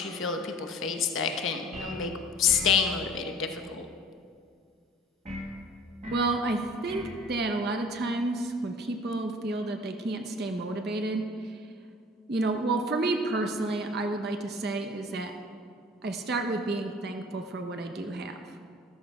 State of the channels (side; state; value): both; normal; correlation 0.46